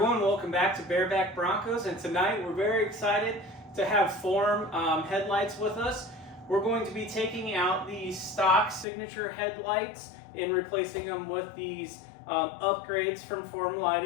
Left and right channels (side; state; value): right; drops out; at 8.8 s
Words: welcome back to Bareback Broncos, and tonight we're very excited to have Form headlights with us. We're going to be taking out the stock signature headlights and replacing them with these upgrades from Form